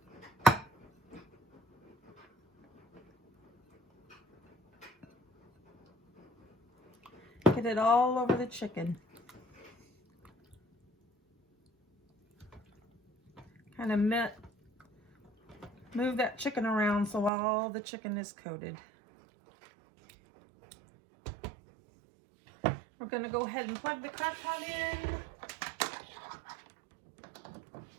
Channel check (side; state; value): left; drops out; at 17.3 s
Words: Get it all over the chicken. Kind of move that chicken around so all the chicken is coated. We're going to go ahead and plug the crock pot in.